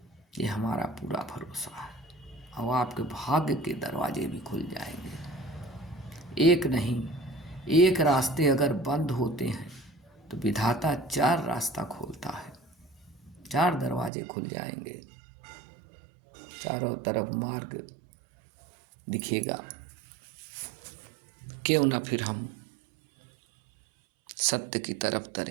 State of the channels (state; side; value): drops out; left; at 14.1 s